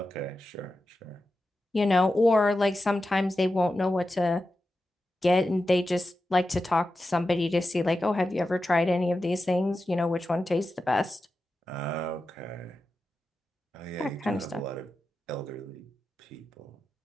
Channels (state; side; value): normal; both; correlation 0.91